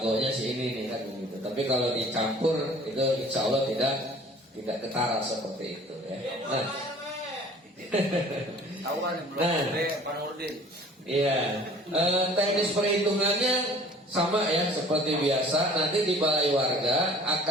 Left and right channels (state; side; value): normal; both; correlation 0.49